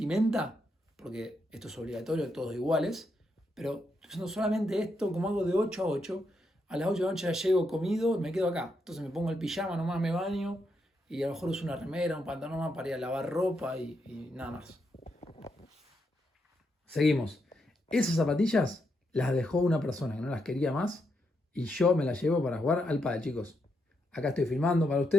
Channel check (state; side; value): normal; both; correlation 0.81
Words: porque esto es obligatorio, todos iguales, pero estoy usando solamente esto, como hago de 8 a 8. A las 8 de la noche ya llego comido, me quedo acá. Entonces me pongo el pijama, nomás me baño y a lo mejor uso una remera, un pantalón más para ir a lavar ropa y nada más. Seguimos. Esas zapatillas las dejó una persona que no las quería más y yo me las llevo para jugar al pádel, chicos. Acá estoy filmando para